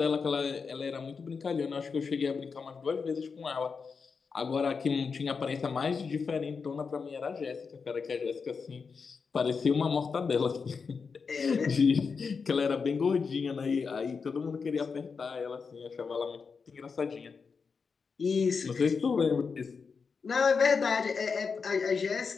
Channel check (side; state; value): right; quieter; 5.3 dB